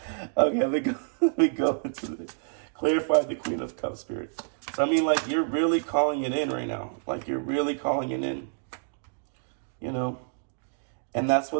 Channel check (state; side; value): silent; left; digital silence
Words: okay, let me go into clarify the Queen of Cups, Spirit. So I mean, like, you're really calling it in right now. Like, you're really calling it in, you know. And that's